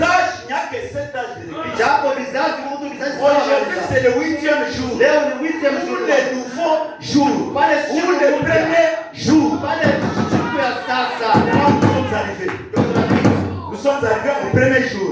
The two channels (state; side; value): identical; both; correlation 1.00